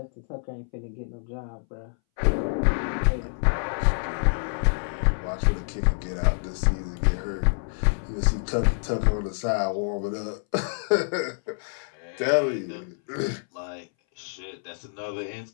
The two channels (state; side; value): silent; right; 60 dB below the other